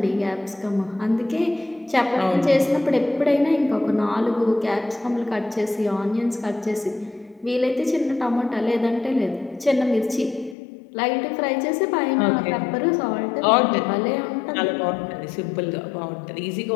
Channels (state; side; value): drops out; right; at 10.6 s